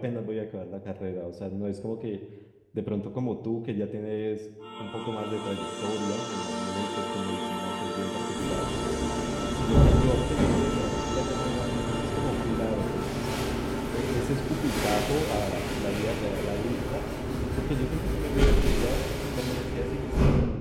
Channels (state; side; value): identical; both; correlation 1.00